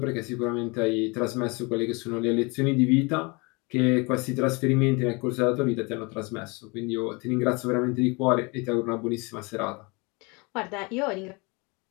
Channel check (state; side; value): quieter; right; 28.5 dB